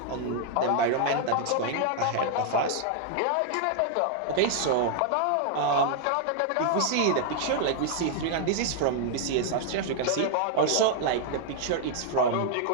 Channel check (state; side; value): different; both; correlation -0.01